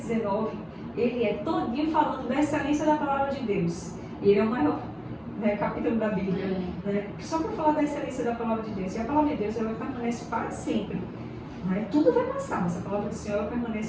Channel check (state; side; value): identical; both; correlation 1.00